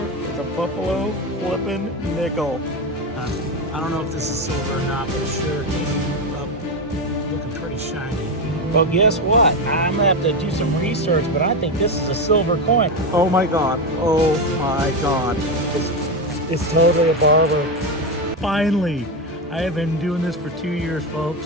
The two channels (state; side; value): normal; both; correlation 0.13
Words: It's a buffalo flipping nickel. I don't know if this is silver or not, but it sure came up looking pretty shiny. Well, guess what? I'm gonna have to do some research, but I think this is a silver coin. Oh my God. Oh my God. It's totally a barber. Finally. I have been doing this for 2 years,